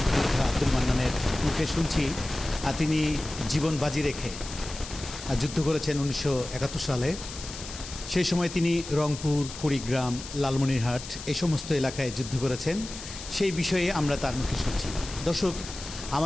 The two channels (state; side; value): noise; left; hiss, 12 dB below the sound